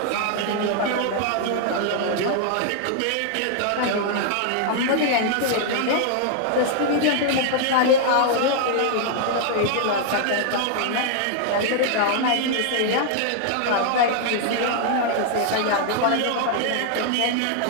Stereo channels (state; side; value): different; both; correlation 0.00